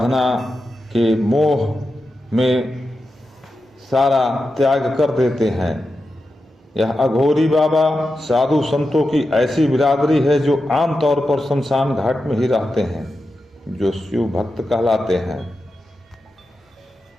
के मोह में सारा त्याग कर देते हैं। यह अघोरी बाबा साधु संतों की ऐसी बिरादरी है जो आमतौर पर शमशान घाट में ही रहते हैं, जो शिव भक्त कहलाते हैं।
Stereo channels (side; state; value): both; normal; correlation 0.90